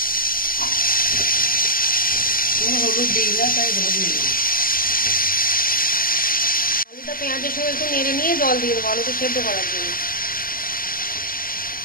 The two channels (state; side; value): late; right; 0.42 ms